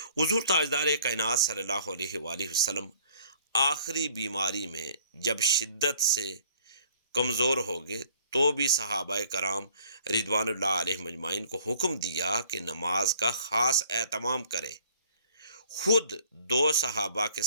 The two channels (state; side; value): inverted; both; correlation -0.57